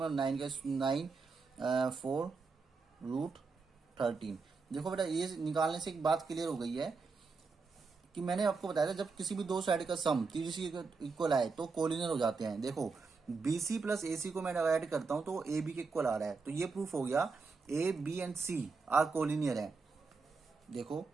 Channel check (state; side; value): quieter; left; 4.5 dB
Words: 9 4 √13। देखो बेटा ये निकालने से एक बात क्लियर हो गई है कि मैंने आपको बताया था जब किसी भी दो साइड का सम 30 इक्वल आए तो कोलिनियर हो जाते हैं। देखो BC प्लस AC को मैं ऐड करता हूं तो AB के इक्वल आ रहा है, तो ये प्रूफ हो गया A, B and C are collinear है। देखो